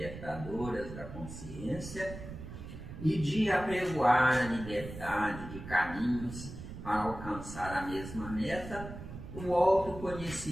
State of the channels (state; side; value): noise; right; rumble, 11 dB below the sound